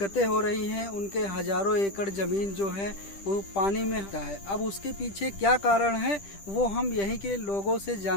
हो रही हैं। उनके हजारों एकड़ ज़मीन जो है वो पानी में है। अब उसके पीछे क्या कारण है वो हम यहीं के लोगों से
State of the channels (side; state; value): right; late; 10 ms